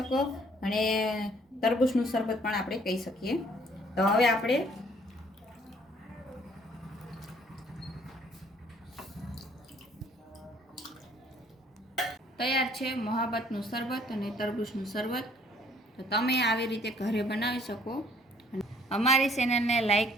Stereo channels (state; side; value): normal; both; correlation 0.60